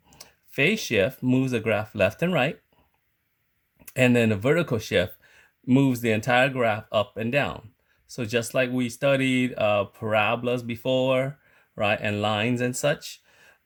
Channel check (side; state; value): both; identical; correlation 1.00